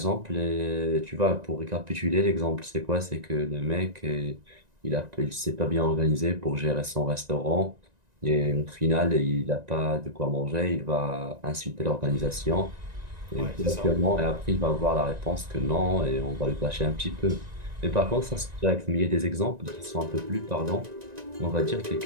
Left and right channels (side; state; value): left; late; 1.9 ms